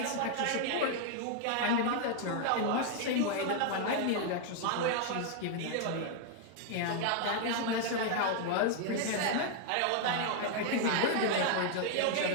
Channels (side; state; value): both; different; correlation 0.00